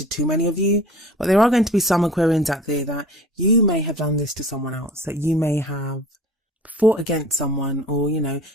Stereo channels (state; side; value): normal; both; correlation 0.43